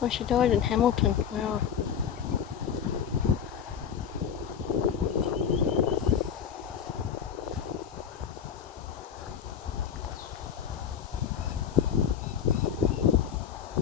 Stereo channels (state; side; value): quieter; right; 8.0 dB